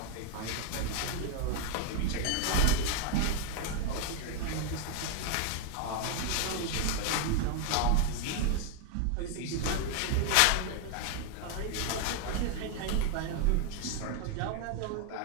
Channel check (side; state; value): both; different; correlation 0.01